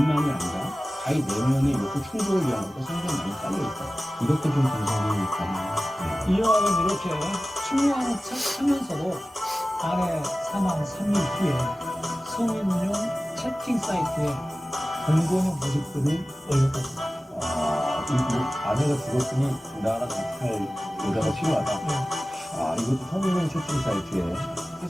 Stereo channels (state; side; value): normal; both; correlation 0.96